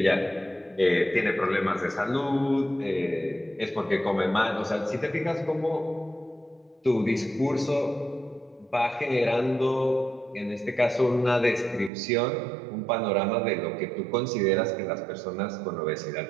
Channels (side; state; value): left; drops out; at 11.9 s